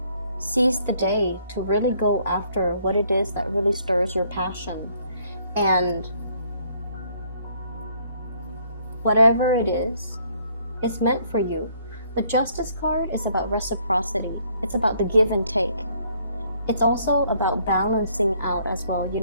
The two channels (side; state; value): both; inverted; correlation -0.65